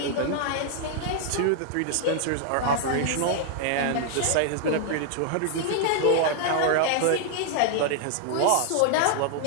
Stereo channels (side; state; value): both; different; correlation 0.00